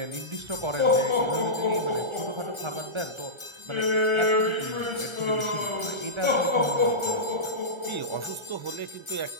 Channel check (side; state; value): left; late; 1.3 ms